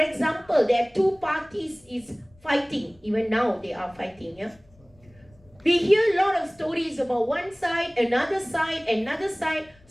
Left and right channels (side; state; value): left; noise; rumble, 29 dB below the sound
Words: there are two parties is fighting. Even now they are fighting, yeah. We hear a lot of stories about one side, another side, another side.